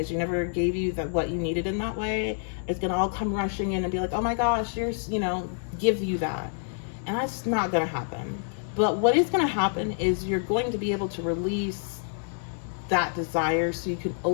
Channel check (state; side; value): silent; right; digital silence